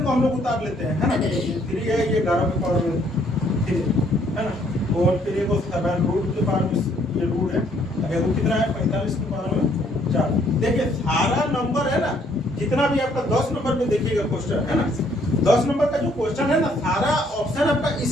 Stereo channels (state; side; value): normal; both; correlation 0.66